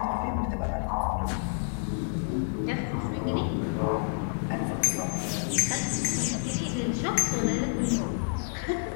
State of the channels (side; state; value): right; silent; 59 dB below the other